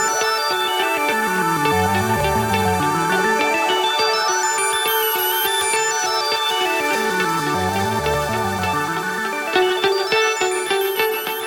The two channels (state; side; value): identical; both; correlation 1.00